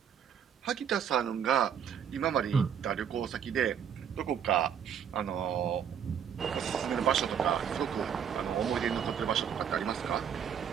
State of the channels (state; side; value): quieter; left; 8.3 dB